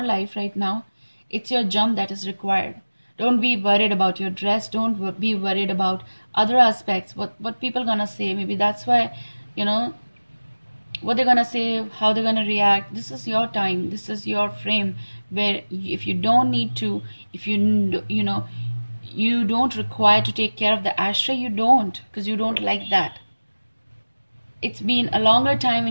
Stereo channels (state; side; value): inverted; both; correlation -1.00